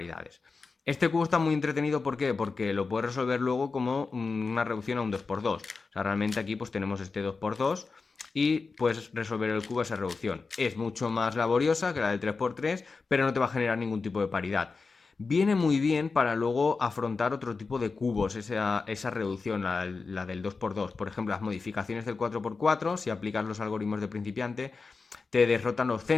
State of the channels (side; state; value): right; quieter; 4.4 dB